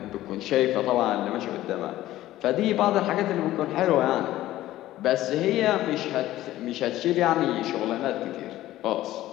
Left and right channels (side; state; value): right; quieter; 14.9 dB